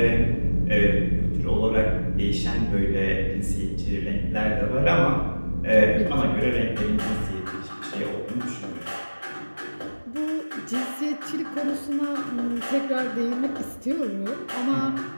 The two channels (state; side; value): inverted; both; correlation -1.00